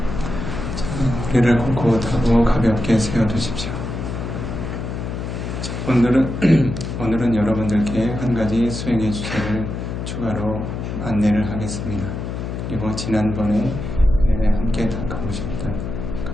자, 허리를 꼿꼿하고 가볍게 세워두십시오. 자, 오늘은 여러분들께 한 가지 수행의 주제를 추가로 안내를 하겠습니다. 그리고 지난번에 함께 닦아보셨던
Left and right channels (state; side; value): noise; left; hum, 5 dB below the sound